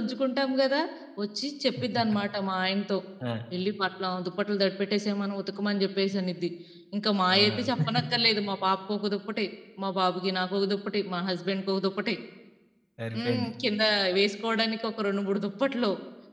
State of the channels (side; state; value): both; identical; correlation 1.00